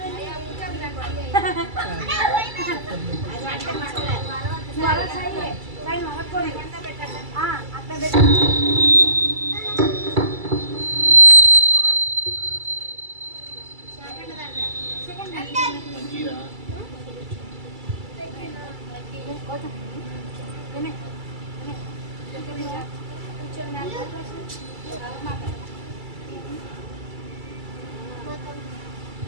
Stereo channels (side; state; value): left; late; 2.3 ms